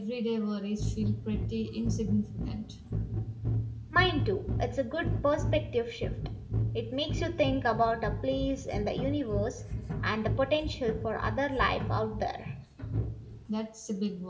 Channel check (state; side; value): identical; both; correlation 1.00